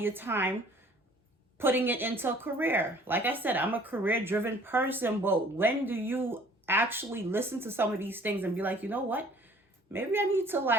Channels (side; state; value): both; normal; correlation 0.54